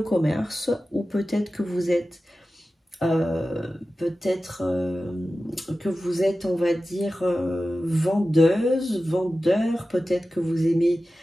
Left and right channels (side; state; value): both; normal; correlation 0.94